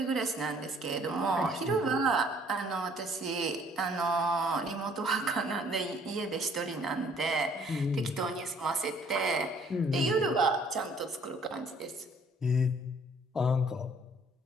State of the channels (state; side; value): normal; both; correlation 0.59